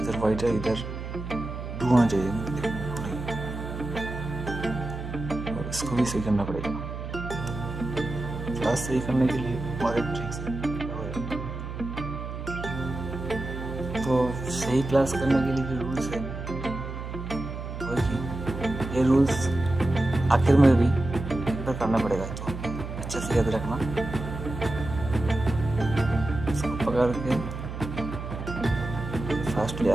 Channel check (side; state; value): right; noise; hum, 7 dB below the sound